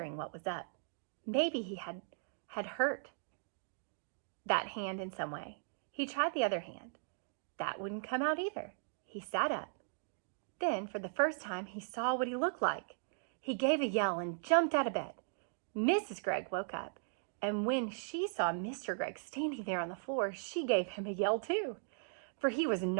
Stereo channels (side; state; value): left; silent; digital silence